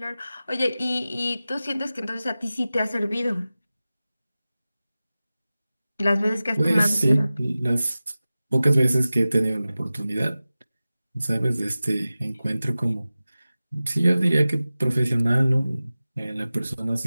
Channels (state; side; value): inverted; both; correlation -0.96